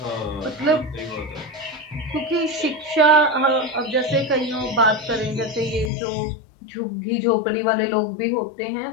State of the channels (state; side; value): drops out; right; at 5.9 s